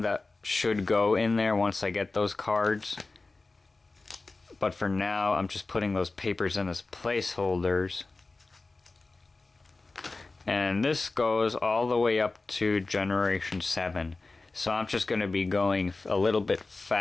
that should go in there once I get those cards. But for now, I'm just putting those papers in as placeholders. And this goes all the way up to Generation 7. So I'm just going to be going a little bit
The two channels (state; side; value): quieter; right; 3.5 dB